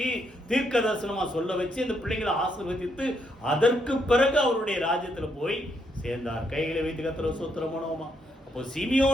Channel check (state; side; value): normal; both; correlation 0.76